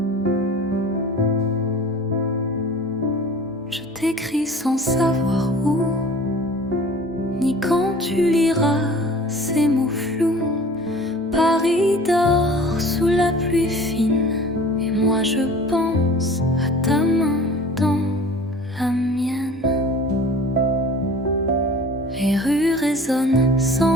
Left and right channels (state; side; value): normal; both; correlation 0.44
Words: Je t'écris sans savoir où, ni quand tu liras ces mots flous. Paris dort sous la pluie fine, et moi je pense à ta main résonne